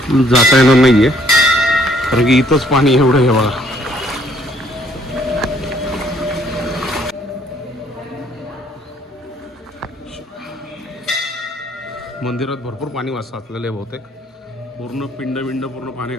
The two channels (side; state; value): both; normal; correlation 0.64